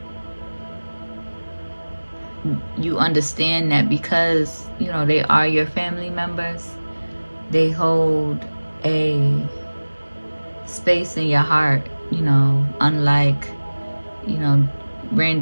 you understand that because you know they are your family members, they hold a space in your heart, you know, unlike, you know,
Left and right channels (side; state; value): both; inverted; correlation -1.00